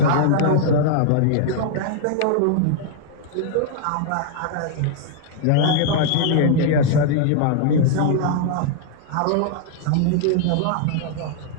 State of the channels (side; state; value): both; different; correlation 0.00